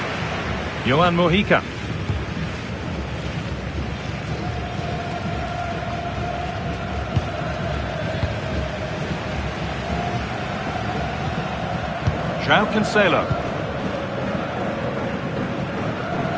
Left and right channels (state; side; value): identical; both; correlation 1.00